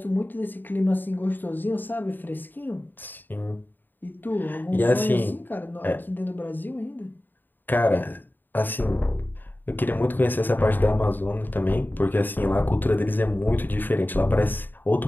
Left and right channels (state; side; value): late; right; 0.091 ms